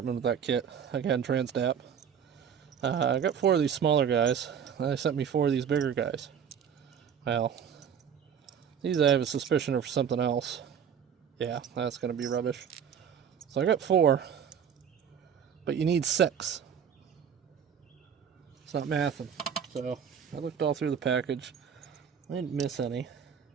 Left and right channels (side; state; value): left; quieter; 7.9 dB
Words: with that kit. Again, Transdap. I got 4 of these smaller guys. They sent me 4 of these bigger guys. Well, these I have a suspicion are for something else. Yeah, that's going to be rubbish. So I got 4, but you need 6. It's not mathing. So I looked all through the package. I didn't miss any.